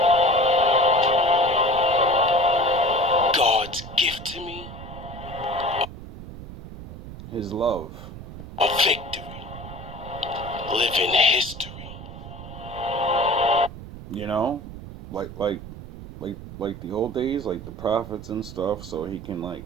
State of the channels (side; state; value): right; noise; rumble, 12 dB below the sound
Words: God's gift to me, His love. a victory. Living history. You know? Like the old days, like the prophets and stuff, so he can like